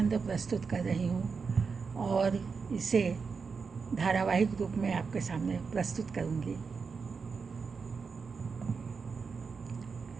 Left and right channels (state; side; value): quieter; left; 5.2 dB